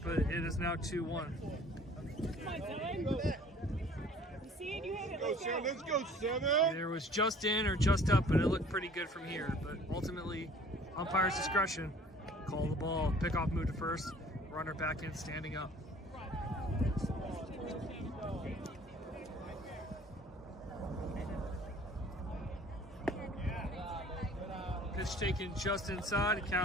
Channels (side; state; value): both; normal; correlation 0.51